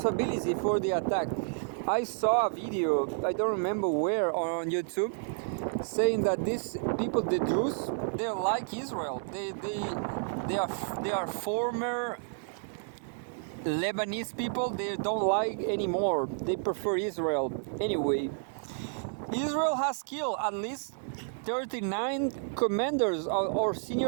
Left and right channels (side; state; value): left; silent; digital silence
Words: for the attack. I saw a video, I don't remember where, on YouTube, saying that these people, the Druze, they're like Israel. They are former Lebanese people. They don't like anymore. They prefer Israel. Anyway, Israel has killed at least 39 commanders or